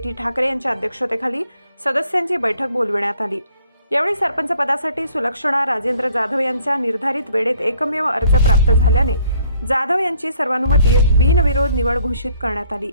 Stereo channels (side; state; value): both; inverted; correlation -0.63